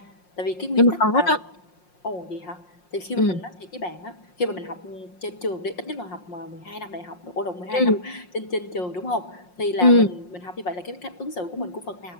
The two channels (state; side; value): late; right; 5.6 ms